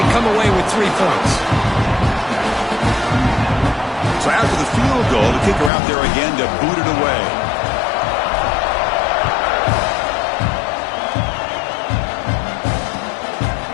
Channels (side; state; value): right; drops out; at 5.7 s